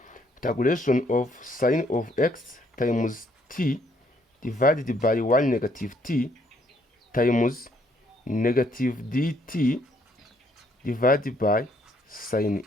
integration of sine of x times t divided by 1 negative t times negative dt divided by sine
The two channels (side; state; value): both; normal; correlation 0.68